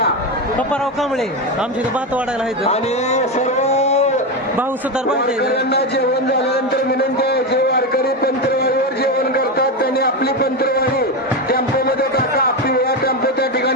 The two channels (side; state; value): both; normal; correlation 0.14